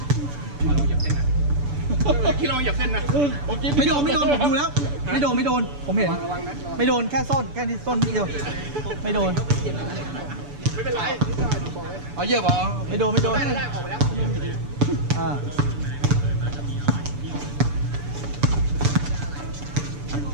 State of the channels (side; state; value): left; late; 6.9 ms